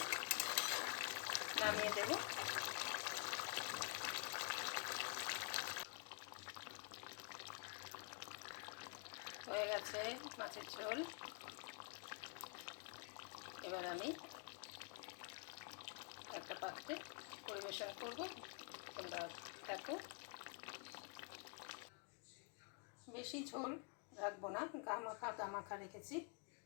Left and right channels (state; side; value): quieter; right; 37.9 dB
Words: নামিয়ে দেব। হয়ে গেছে মাছের ঝোল। এবার আমি একটা পাত্রে পরিবেশন করব, তোমরা দেখো। বেশি ঝোল রাখবো না, গামাখা রেখেছি।